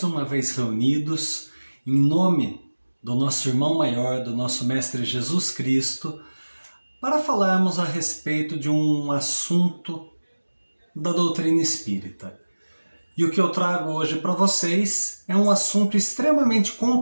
uma vez reunidos em nome do nosso irmão maior, do nosso Mestre Jesus Cristo, para falarmos a respeito de um assunto da doutrina espírita. E o que eu trago hoje para vocês é um assunto extremamente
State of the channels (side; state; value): both; inverted; correlation -1.00